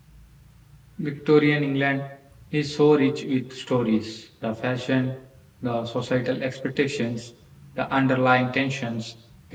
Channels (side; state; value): both; identical; correlation 1.00